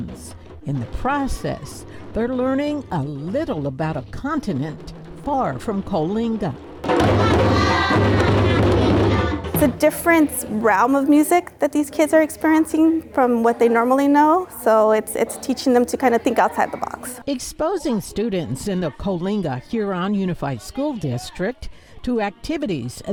In the process, they're learning a little about a continent far from Coalinga. It's a different realm of music that these kids are experiencing from what they normally know, so it's teaching them to kind of think outside the box. Exposing students in the Coalinga-Huron Unified School District to activities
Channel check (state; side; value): identical; both; correlation 1.00